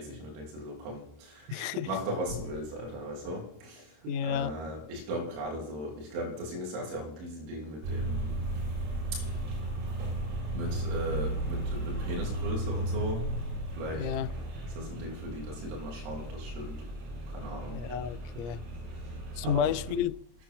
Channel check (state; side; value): late; left; 26 ms